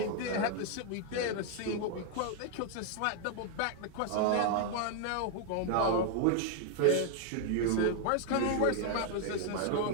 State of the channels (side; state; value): both; different; correlation 0.00